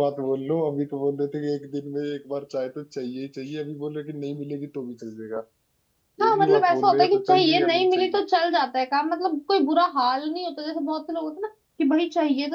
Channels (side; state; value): both; identical; correlation 1.00